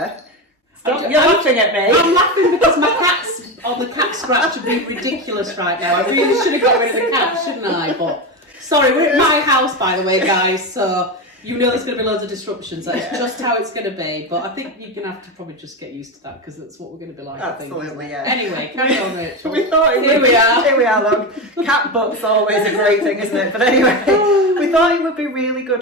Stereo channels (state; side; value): normal; both; correlation 0.17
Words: Stop, you're laughing at me. I'm laughing because my cat's on the cat scratch would be ridiculous right now. I really should have got rid of the cat, shouldn't I? But sorry, we're at my house, by the way, guys, so you know there's going to be loads of disruptions. That's just how it's going to be. But I think you're going to have to probably just get used to that, because that's what we're going to be like. Absolutely, I think. yeah. Anyway, carry on, Rachel. We thought here we are, look. Cat book's always a great thing, isn't it? But anyway, we thought it would be really good